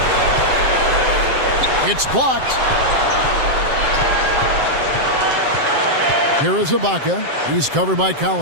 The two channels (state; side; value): late; left; 7.6 ms